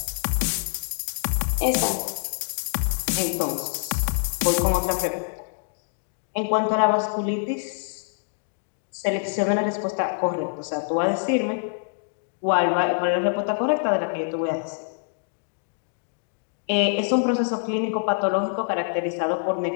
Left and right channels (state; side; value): silent; right; digital silence